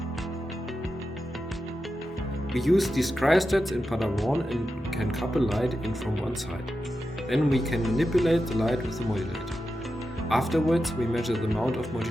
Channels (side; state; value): both; normal; correlation 0.90